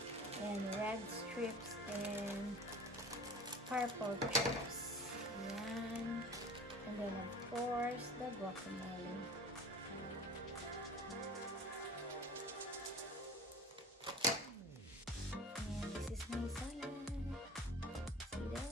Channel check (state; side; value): normal; both; correlation 0.40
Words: and red strips and purple chips. Yan. And then of course the guacamole. My salad. See